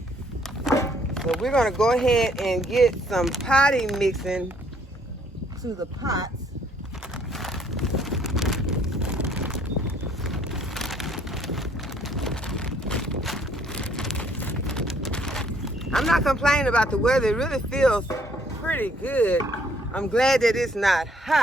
So we're going to go ahead and get some potting mixing to the pots. I'm not complaining about the weather. It really feels pretty good. I'm glad that it's not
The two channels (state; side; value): normal; both; correlation 0.64